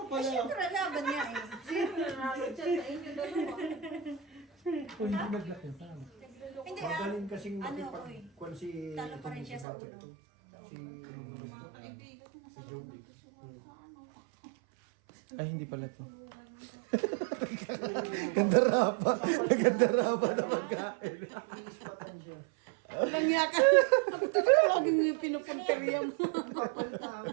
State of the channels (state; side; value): drops out; left; at 9.7 s